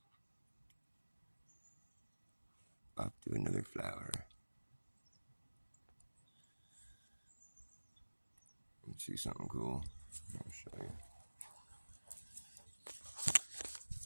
Off to another flower. Let's see something cool. I'll show you.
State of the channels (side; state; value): both; inverted; correlation -1.00